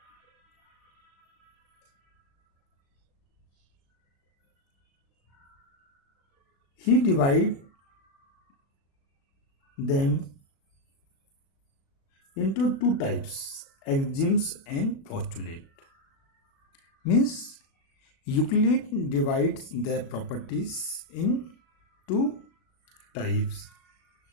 He divide them into two types, axioms and postulate. Means Euclid divides the properties in two types,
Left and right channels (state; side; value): late; right; 36 ms